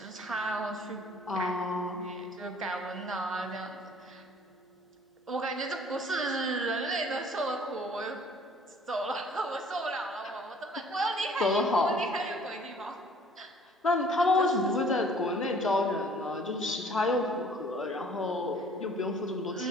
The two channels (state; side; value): normal; both; correlation 0.54